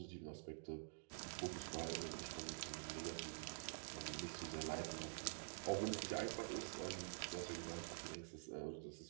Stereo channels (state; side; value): silent; left; digital silence